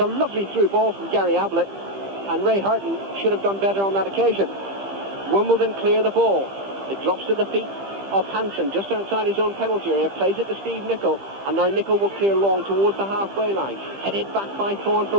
a lovely through ball from Gary Ablett, and Ray Houghton should have done better on that occasion. Wimbledon clear the ball. It drops to the feet of Hansen, just outside his own penalty area, plays it to Steve Nicol, and now Nicol will clear long towards the halfway line. Headed back by Thorne for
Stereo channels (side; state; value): left; late; 15 ms